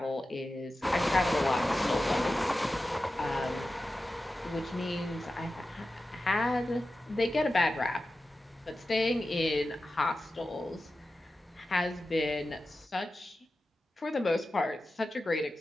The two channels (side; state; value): both; normal; correlation 0.93